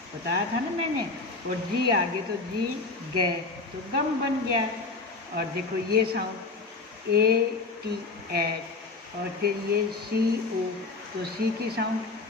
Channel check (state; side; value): quieter; right; 3.7 dB